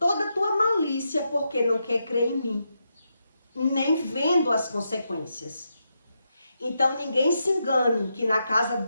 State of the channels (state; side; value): inverted; both; correlation -0.84